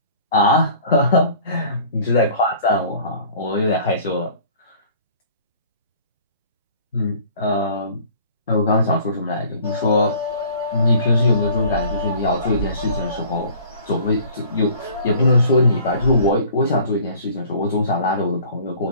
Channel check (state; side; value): inverted; both; correlation -0.49